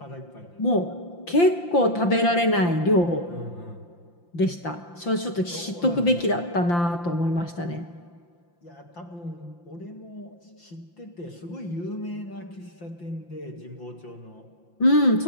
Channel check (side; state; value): right; late; 5.8 ms